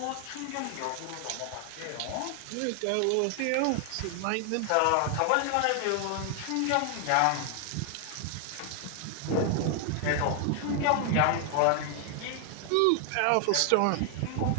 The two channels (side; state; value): both; different; correlation 0.00